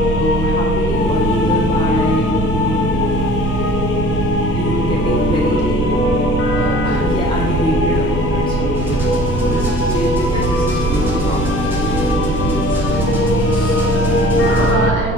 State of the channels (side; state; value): right; noise; rumble, 4 dB below the sound